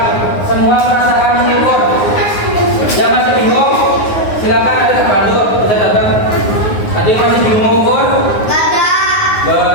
semua merasakan mengukur. Yang masih bingung, silakan ada bantu, bisa datang. Ada yang masih bingung mengukur?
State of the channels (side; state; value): right; late; 9.6 ms